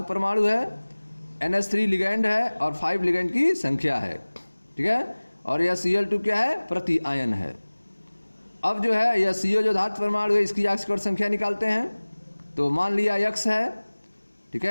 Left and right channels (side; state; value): both; inverted; correlation -1.00